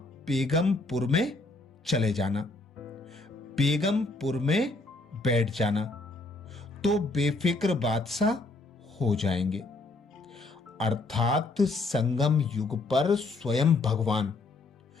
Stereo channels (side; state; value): right; quieter; 3.3 dB